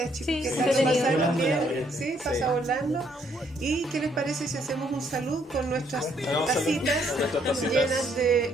chicos, Sí, ¿qué sí, tal? ¿Lo entretenido. pasaron bien? Sí, pasa volando. ¿Y qué les parece si hacemos un salud con nuestras Hagamos tacitas salud con nuestras tacitas. llenas de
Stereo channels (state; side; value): normal; both; correlation 0.69